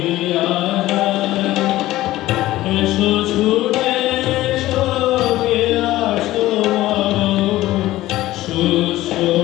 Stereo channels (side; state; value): right; quieter; 16.1 dB